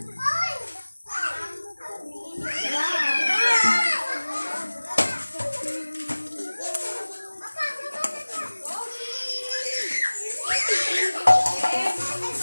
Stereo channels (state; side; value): inverted; both; correlation -1.00